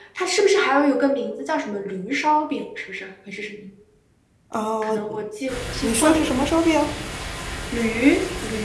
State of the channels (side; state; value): both; identical; correlation 1.00